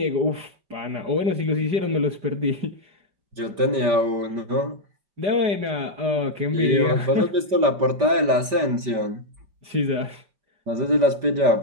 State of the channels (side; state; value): left; late; 5.1 ms